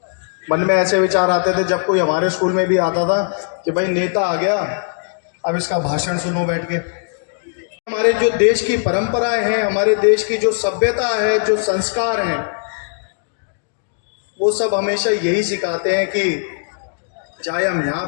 मन में ऐसे विचार आते थे जब कोई हमारे स्कूल में भी आता था कि भाई नेता आ गया, अब इसका भाषण सुनो बैठ के। हमारे जो देश की परंपराएं हैं, हमारे देश की जो सभ्यता है, जो संस्कार हैं, वो सब हमेशा यही सिखाते हैं कि चाहे हम यहाँ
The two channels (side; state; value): right; silent; digital silence